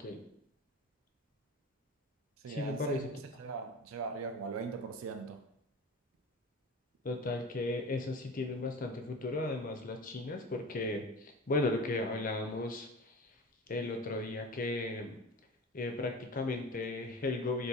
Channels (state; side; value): normal; both; correlation 0.34